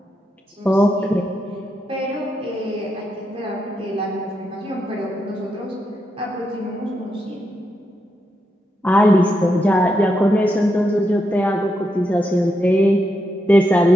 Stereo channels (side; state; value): both; normal; correlation 0.83